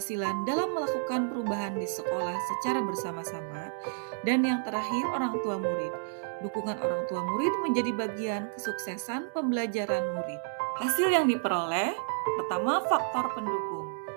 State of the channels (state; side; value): silent; left; digital silence